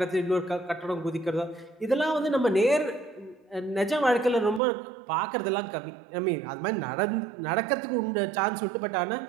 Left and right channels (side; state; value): left; drops out; at 4.6 s